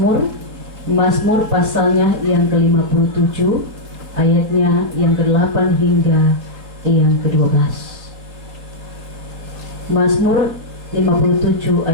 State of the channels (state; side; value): late; left; 3.6 ms